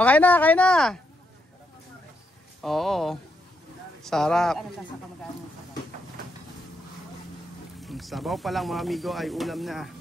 Okay na, kain na. Oo. Sarap. Sabaw pa lang mga amigo ay ulam na.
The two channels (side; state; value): both; normal; correlation 0.79